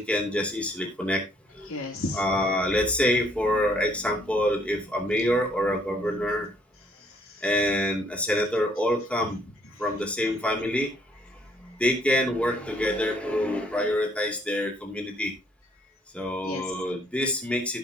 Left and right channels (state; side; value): normal; both; correlation 0.65